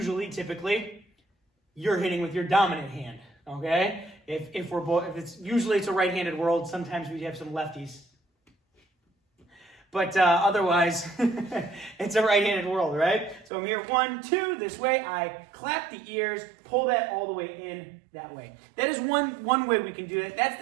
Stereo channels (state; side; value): drops out; left; at 13.5 s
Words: typically, you're hitting with your dominant hand, okay? If it's a right-handed world, sometimes we have some lefties. But otherwise, it's a right-handed world, right? So I'm here, 1, 2, this way. I clap the ears, pull that all the way in that way. That is one way we can do it. That's